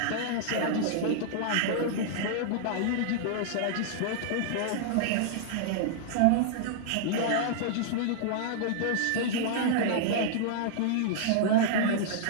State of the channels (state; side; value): different; both; correlation -0.02